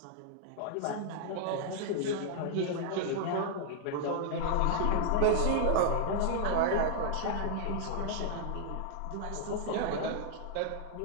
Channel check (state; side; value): different; both; correlation -0.01